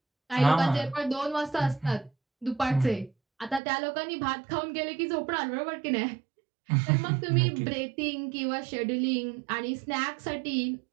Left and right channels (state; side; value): drops out; left; at 3.6 s